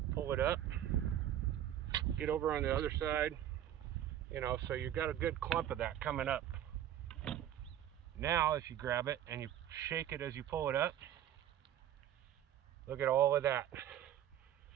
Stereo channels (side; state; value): left; quieter; 11.2 dB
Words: pull it up, get over on the other side, so you've got a good clump of that coming up. Now if you grab it and you shake it as you pull it up, look at all of that.